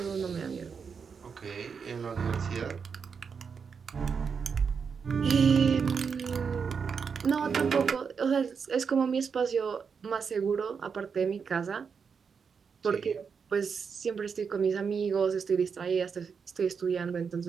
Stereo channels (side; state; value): left; quieter; 6.1 dB